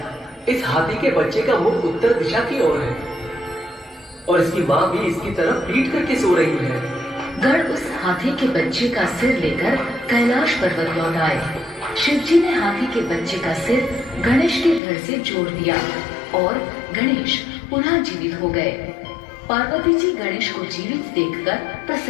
इस हाथी के बच्चे का मुख उत्तर दिशा की ओर है और इसकी माँ भी इसकी तरफ पीट करके सो रही है। गण उस हाथी के बच्चे का सिर लेकर कैलाश पर्वत लौट आए। शिव जी ने हाथी के बच्चे का सिर गणेश के धड़ से जोड़ दिया और गणेश पुनः जीवित हो गए। पार्वती जी गणेश को जीवित देखकर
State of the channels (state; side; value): drops out; right; at 14.8 s